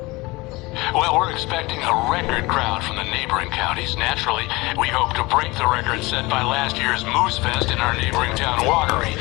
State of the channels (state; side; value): quieter; right; 22.5 dB